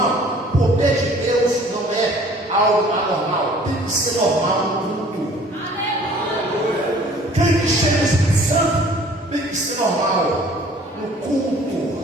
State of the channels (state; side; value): normal; both; correlation 0.52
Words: o poder de Deus não é algo anormal, tem que ser normal no culto. Quem que chega no Espírito Santo tem que ser normal no culto.